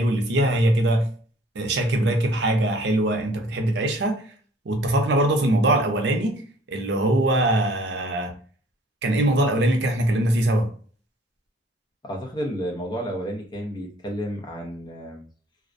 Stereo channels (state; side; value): normal; both; correlation 0.56